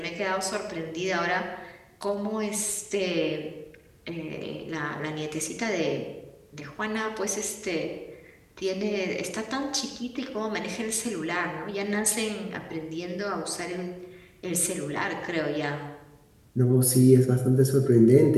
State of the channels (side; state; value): both; identical; correlation 1.00